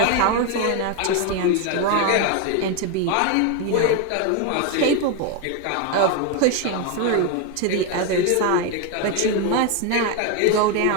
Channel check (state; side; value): different; both; correlation 0.01